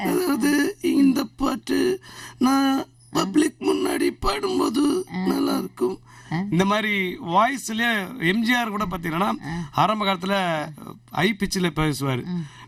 அதாவது இந்த பாட்டு நான் பப்ளிக் முன்னாடி பாடும்போது நல்லா இருக்கும். இந்த மாதிரி வாய்ஸ்லேயே எம்ஜிஆர் கூட பார்த்தீங்கன்னா ஆரம்ப காலத்தில் ஹை பிச்சில் பேசுவார்.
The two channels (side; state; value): both; identical; correlation 1.00